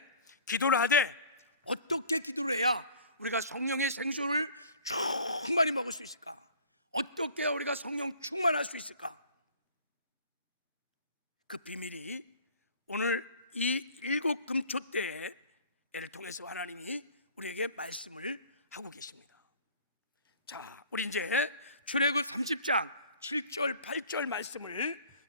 기도를 하되 어떻게 기도를 해야 우리가 성령의 생수를 충만히 먹을 수 있을까? 어떻게 우리가 성령 충만할 수 있을까? 그 비밀이 오늘 이 7금초대를 통해서 하나님이 우리에게 말씀을 하고 계십니다. 자, 우리 이제 출애굽 30장 7절 8절 말씀을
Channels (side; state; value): both; inverted; correlation -0.48